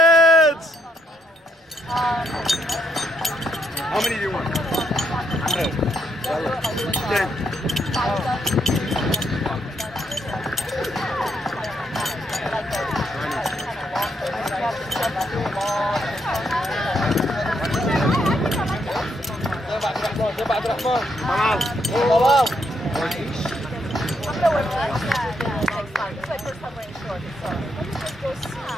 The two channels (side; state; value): both; normal; correlation 0.76